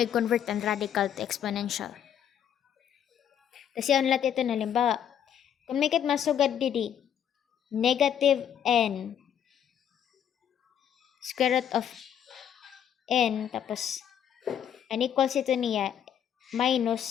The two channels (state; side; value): quieter; right; 9.2 dB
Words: convert ang radical to exponential. Kasi ang lahat ito na halimbawa, kung may kit masugad didi, negative n square root of n tapos unequals ito niya